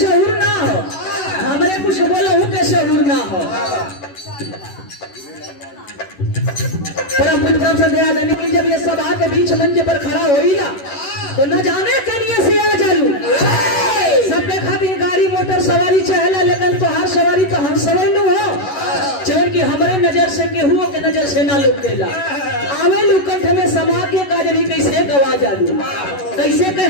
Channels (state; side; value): late; right; 11 ms